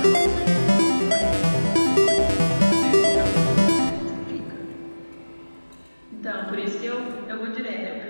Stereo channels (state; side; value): inverted; both; correlation -1.00